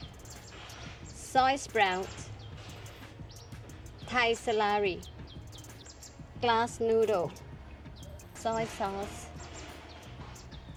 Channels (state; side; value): identical; both; correlation 1.00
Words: soy sprout, Thai celery, glass noodle, soy sauce,